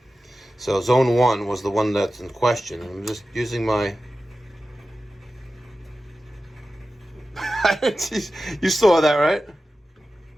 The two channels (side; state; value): both; normal; correlation 0.94